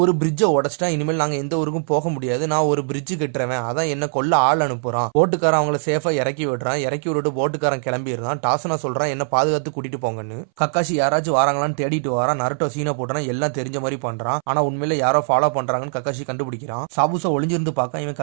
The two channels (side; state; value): left; silent; 63 dB below the other